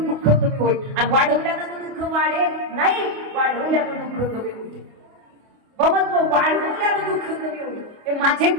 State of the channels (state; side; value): late; left; 29 ms